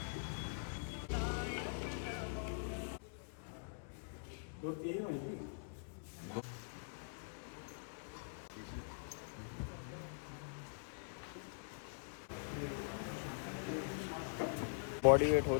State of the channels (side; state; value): right; silent; digital silence